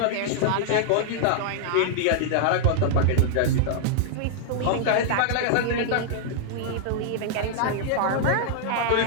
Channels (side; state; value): both; different; correlation -0.01